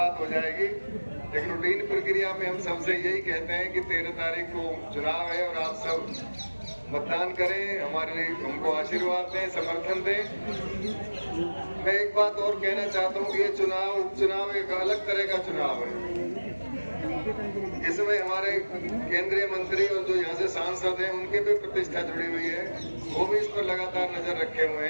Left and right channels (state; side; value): inverted; both; correlation -1.00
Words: हो जाएगी। लेकिन रूटीन प्रक्रिया में हम सबसे यही कहते हैं कि 13 तारीख को चुनाव है और आप सब मतदान करें, हमारे लिए हमको आशीर्वाद दें, समर्थन दें। मैं एक बात और कहना चाहता हूँ कि ये चुनाव उपचुनाव एक अलग तरह का चुनाव है। इसमें हमारे केंद्रीय मंत्री और जो यहाँ से सांसद हैं उनकी भी प्रतिष्ठा जुड़ी हुई है, वो भी इस पर लगातार नजर रखे हुए